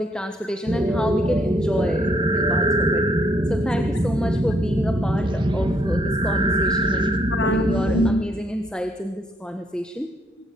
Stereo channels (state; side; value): normal; both; correlation 0.70